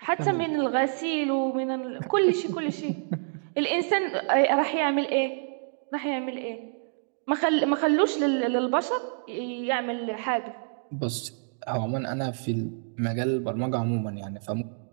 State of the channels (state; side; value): silent; left; digital silence